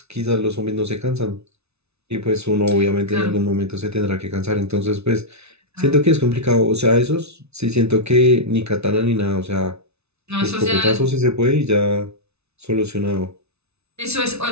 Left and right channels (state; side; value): late; left; 0.80 ms